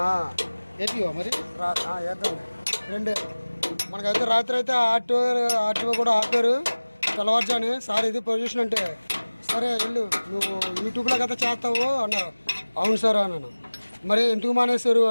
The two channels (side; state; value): both; inverted; correlation -1.00